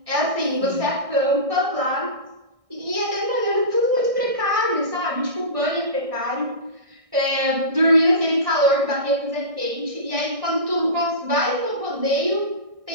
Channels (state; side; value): late; left; 1.6 ms